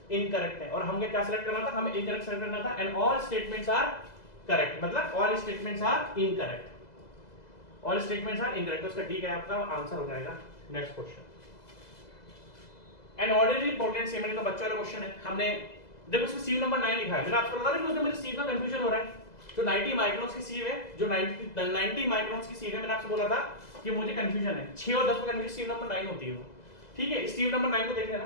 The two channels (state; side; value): late; right; 2.0 ms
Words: इनकरेक्ट है, और हमें क्या सेलेक्ट करना था, हमें इनकरेक्ट सेलेक्ट करना था। And all statements are correct, मतलब all statements are incorrect, all statements are incorrect. तो इसका डी क्या है आपका आंसर हो जाएगा। Next question, an ordinary Portland cement का बच्चा वाला क्वेश्चन है। हमने देखो इसमें सीव नंबर 9 लिखा है, मैंने आपको बता रहा हूं कि मुझे सीव का कंफ्यूजन हो रहा है। जो 90 माइक्रोन्स की सीव है, जो 90 माइक्रोन्स की सीव है, मैंने आपसे बोला था कि मुझे कंफ्यूजन है 6 और 10 में कंफ्यूजन सीव नंबर 9 होती है वो, ठीक है। सीव नंबर 9 को देख